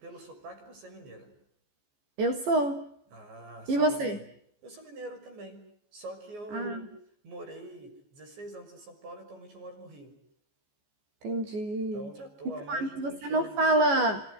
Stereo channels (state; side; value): late; left; 14 ms